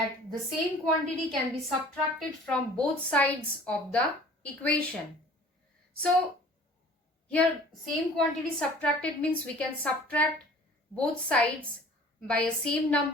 the same quantity can be subtracted from both sides of the equation. So here same quantity subtracted means we can subtract both sides by a same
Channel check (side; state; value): both; normal; correlation 0.48